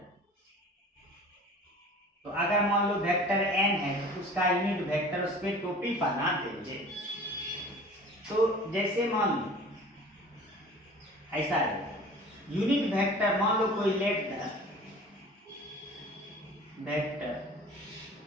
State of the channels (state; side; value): normal; both; correlation 0.44